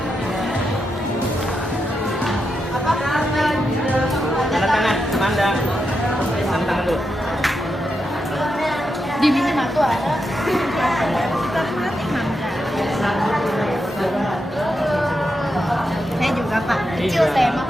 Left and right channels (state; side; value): normal; both; correlation 0.85